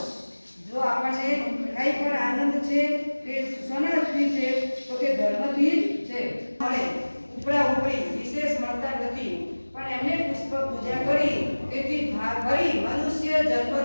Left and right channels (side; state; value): both; inverted; correlation -1.00